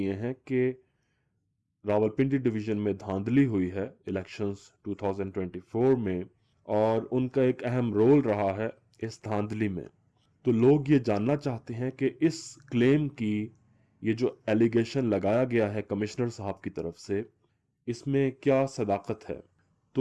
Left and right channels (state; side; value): identical; both; correlation 1.00